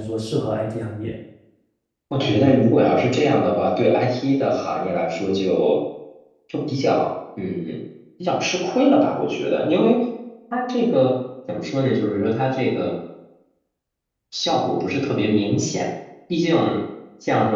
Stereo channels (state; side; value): identical; both; correlation 1.00